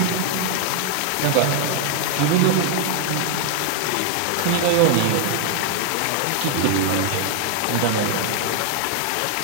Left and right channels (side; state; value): both; different; correlation 0.00